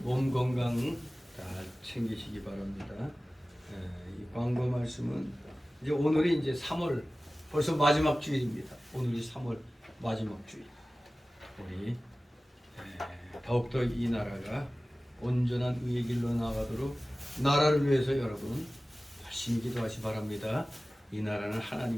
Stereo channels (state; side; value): normal; both; correlation 0.97